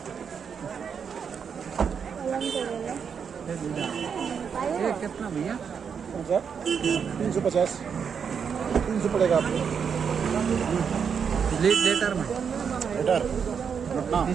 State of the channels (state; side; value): quieter; left; 6.8 dB